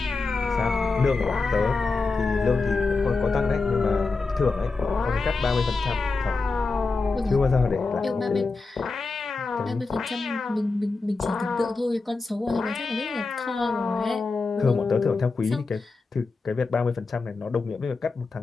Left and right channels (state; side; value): quieter; right; 4.0 dB